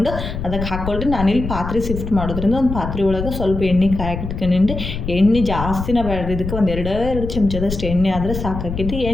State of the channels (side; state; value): left; noise; rumble, 6 dB below the sound